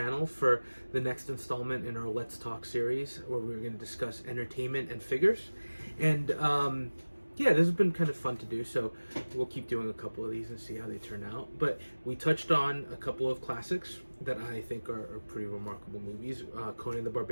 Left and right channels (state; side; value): inverted; both; correlation -1.00